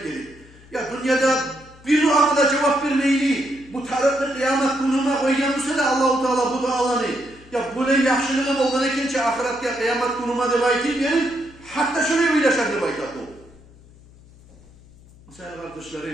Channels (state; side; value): noise; left; hum, 24 dB below the sound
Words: dedi. Ya dünyada bir duama da cevap vermeyeli bu taraflı kıyamet gününe koyganmışsa da Allah-u Teala bu dualarını ya bu ne yaxşılığım olgan ekençe ahiretke kıyamet günüme de bayt verin. Hatta şöyle bir yaşar de bayt bu. Mesela